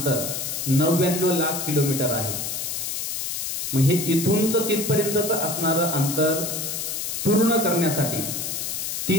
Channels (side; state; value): left; noise; hiss, 3 dB below the sound